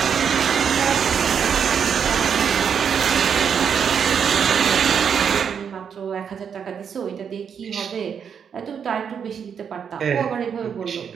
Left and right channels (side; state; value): left; quieter; 7.3 dB